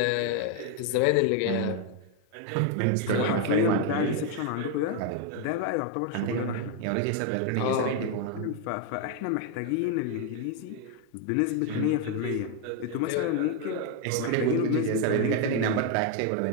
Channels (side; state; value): both; different; correlation 0.01